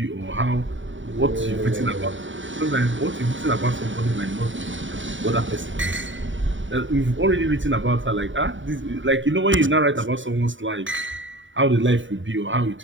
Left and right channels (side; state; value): left; late; 0.55 ms